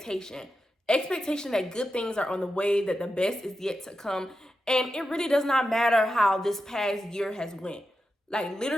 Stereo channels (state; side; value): normal; both; correlation 0.89